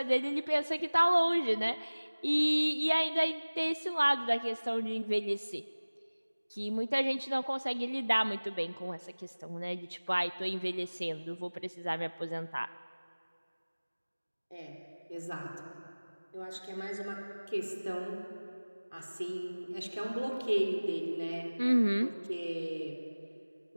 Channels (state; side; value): inverted; both; correlation -1.00